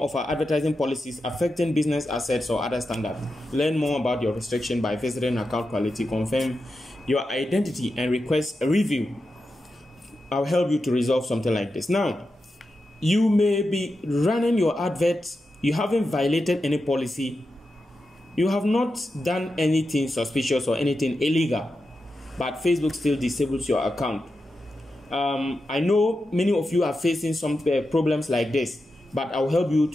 of our advertising policies affecting business assets or other standards. Learn more about your restriction by visiting Account Quality, confirm your identity, and request a review. I'll help you to resolve something like this. Now, you may be running your adverts, you haven't violated any policy, you have not done anything suspicious or anything illegal, but Facebook still disables your account. I know many of you are facing some problems like this, but I'll help you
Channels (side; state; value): both; normal; correlation 0.89